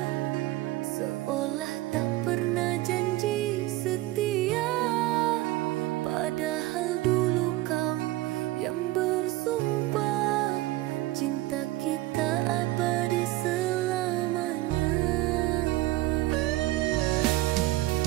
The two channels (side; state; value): left; quieter; 17.7 dB